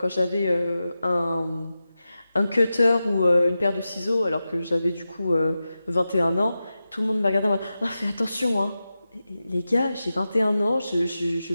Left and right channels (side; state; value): both; inverted; correlation -0.92